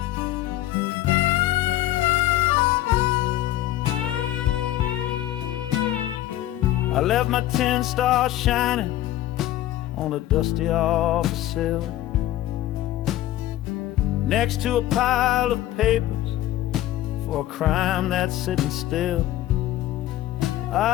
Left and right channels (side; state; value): right; quieter; 14.2 dB